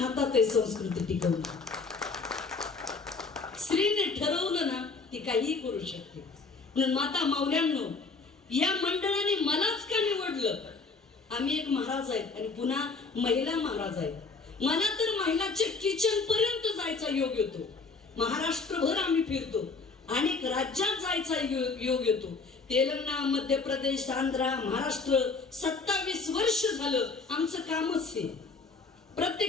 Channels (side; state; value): right; quieter; 4.3 dB